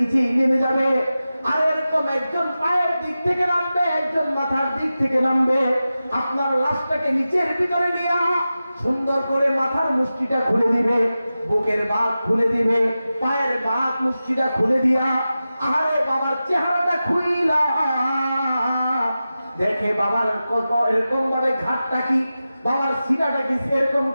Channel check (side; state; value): both; inverted; correlation -0.94